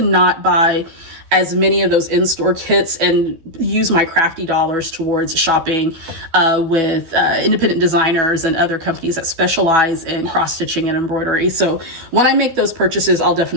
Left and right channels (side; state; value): left; late; 12 ms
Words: not buy as many of those in-store kits and use my crafty dollars towards shopping with independent designers and other companies that specialize in cross-stitching and embroidery. So when I make those purchases, I'll